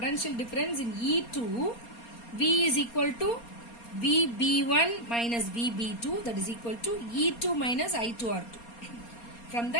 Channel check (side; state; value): right; late; 4.3 ms